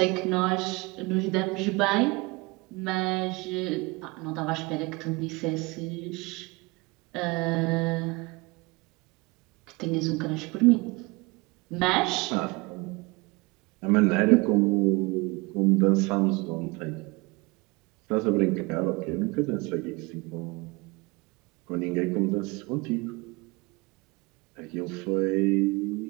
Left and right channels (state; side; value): quieter; left; 25.4 dB